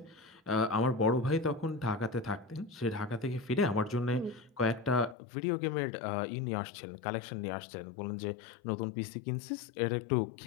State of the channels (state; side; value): drops out; right; at 5.2 s